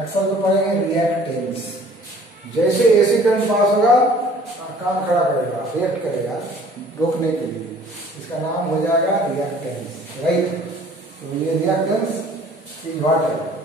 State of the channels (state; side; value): normal; both; correlation 0.53